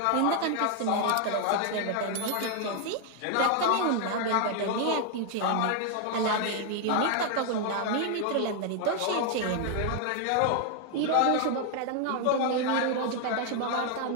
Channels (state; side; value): different; both; correlation 0.00